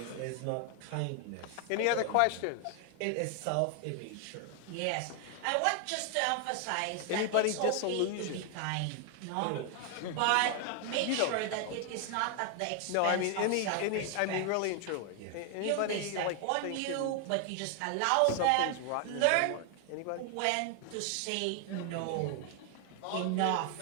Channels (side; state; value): both; different; correlation 0.00